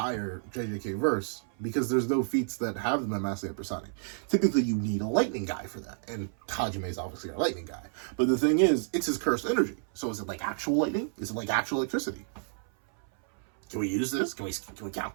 JJK verse because there's no feats that have them at massively hypersonic. Typically, you need a lightning guy for that, and Hajime is obviously a lightning guy. But the thing is, it's his cursed energy. So is it like actual lightning? Is it like actual electricity? Can we use this? Can we count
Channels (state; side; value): silent; left; 58 dB below the other